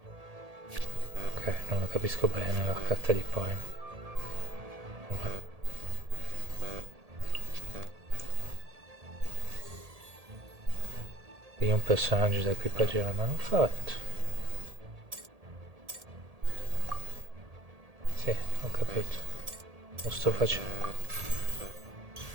Ok, non lo capisco bene la carta di poi. Io un personaggio da equipaggiare ma non fatto. Sì, ho capito. Lo sto facendo.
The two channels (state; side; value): late; left; 1.8 ms